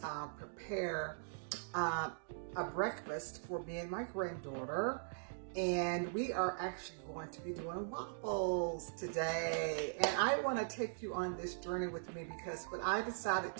prepare a breakfast for me and my granddaughter, and we are actually going to be doing waffles today. And I want to take you on this journey with me because what I decided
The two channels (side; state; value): left; silent; digital silence